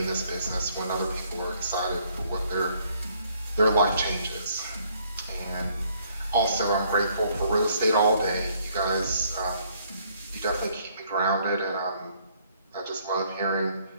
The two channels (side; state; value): both; inverted; correlation -0.66